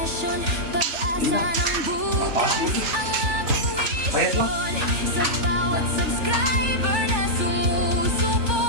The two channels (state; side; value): late; left; 3.4 ms